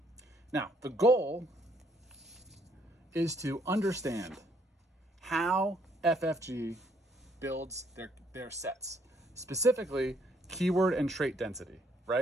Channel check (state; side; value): normal; both; correlation 0.68